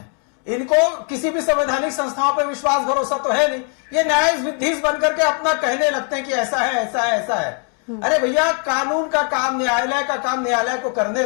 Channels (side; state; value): right; quieter; 39.1 dB